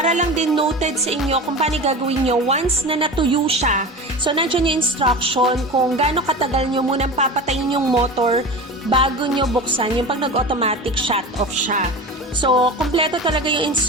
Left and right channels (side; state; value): both; normal; correlation 0.31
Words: lang din noted sa inyo kung paano gagawin nyo once na natuyo siya. So, nandiyan yung instruction kung gaano katagal nyo munang papatayin yung motor bago nyo buksan yung pag nag-automatic shut off siya. So, kompleto talaga yung